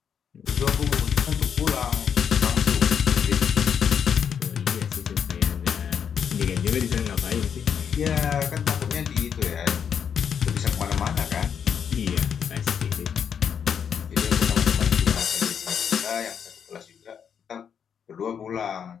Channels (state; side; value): quieter; right; 7.7 dB